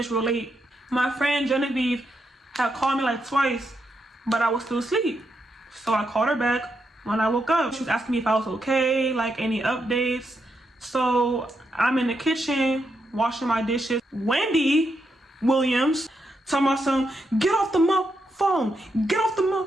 real late. My friend Genevieve had called me like twice, but I was still asleep. So I called her back when I woke up. She was asking me if I was okay, like any updates. So I'm in the kitchen washing my dishes. Wendy Williams talking about some, get off the phone. Get off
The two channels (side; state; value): both; normal; correlation 0.82